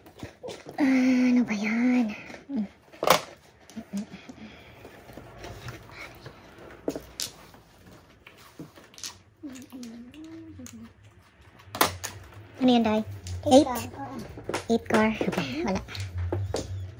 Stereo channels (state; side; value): identical; both; correlation 1.00